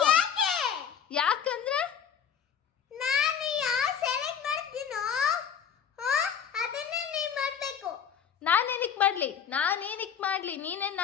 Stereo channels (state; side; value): quieter; right; 7.9 dB